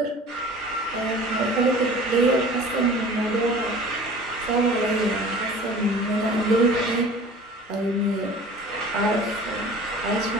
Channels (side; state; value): both; normal; correlation 0.43